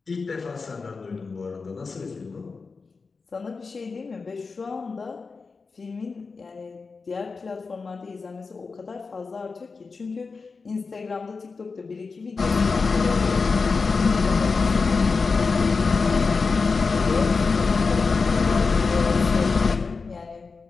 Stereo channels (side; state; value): right; quieter; 4.5 dB